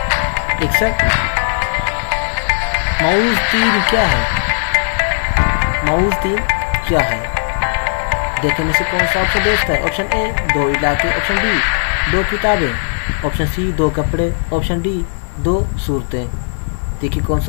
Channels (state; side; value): silent; right; digital silence